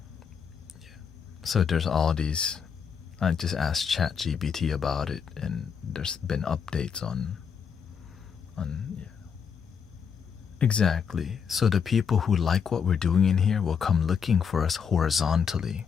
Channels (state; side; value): quieter; right; 6.7 dB